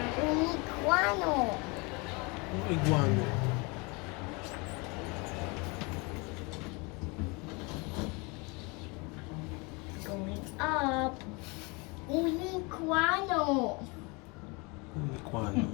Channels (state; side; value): quieter; right; 28.5 dB